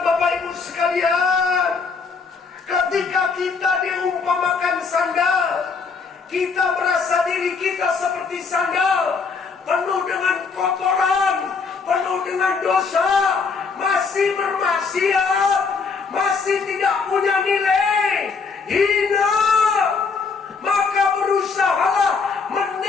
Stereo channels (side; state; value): right; quieter; 5.0 dB